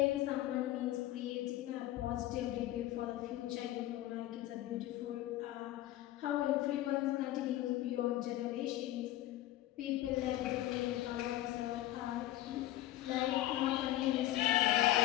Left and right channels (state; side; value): quieter; right; 14.9 dB